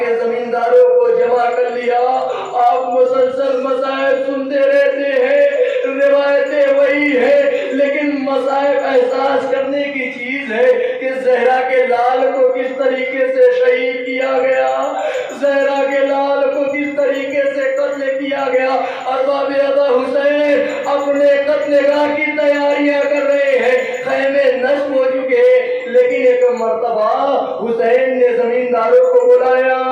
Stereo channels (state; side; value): identical; both; correlation 1.00